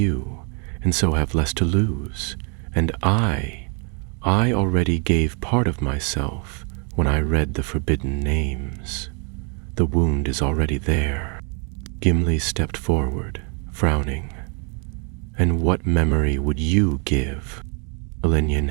and so have less to lose. And I already gave part of myself when I read the forbidden names. The wound is already there." Gimli stepped forward, frowning. "And what memory would you give?" Elenion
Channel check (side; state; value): left; quieter; 37.1 dB